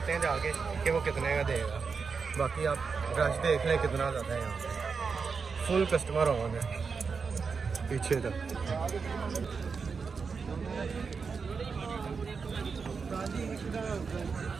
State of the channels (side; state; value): left; quieter; 5.3 dB